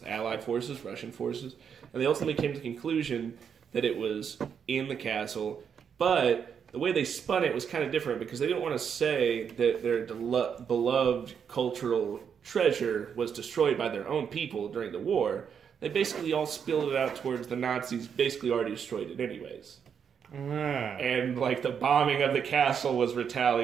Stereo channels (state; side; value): quieter; left; 7.3 dB